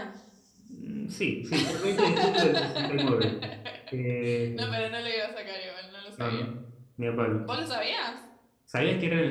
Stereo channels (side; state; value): both; identical; correlation 1.00